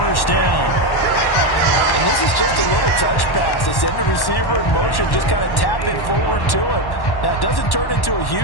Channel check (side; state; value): right; late; 1.1 ms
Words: down. And this is just a little touch pass. They send the receiver in motion, just kind of tap it forward to him. Now, it doesn't turn into a